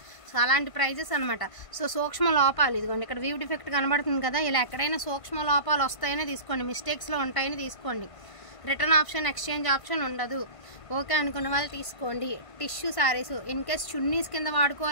సో అలాంటి ప్రైజెస్ అనమాట. సో సూక్ష్మ లోపాలు, ఇదిగోండి ఇక్కడ వ్యూ డిఫెక్ట్ కనబడుతుంది కదా, ఇలా ఎక్కడైనా సూక్ష్మ లోపాలు వస్తాయనే తీసుకోండి, మిస్టేక్స్లో ఉంటాయని తీసుకోండి. రిటర్న్ ఆప్షన్, ఎక్స్చేంజ్ ఆప్షన్ ఉండదు. ఓకే అనుకున్న వాళ్ళు తీసుకోండి. Tissue saris in case chunnis కింద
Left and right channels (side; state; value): right; late; 1.5 ms